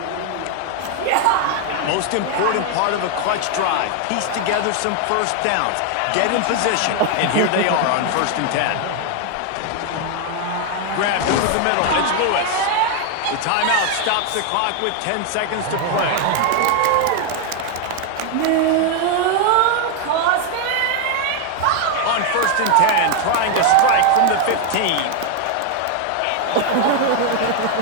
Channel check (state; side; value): different; both; correlation 0.00